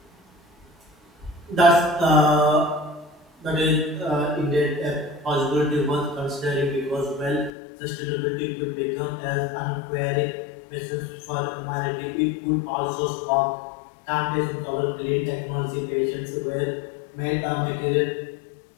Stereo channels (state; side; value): drops out; right; at 7.5 s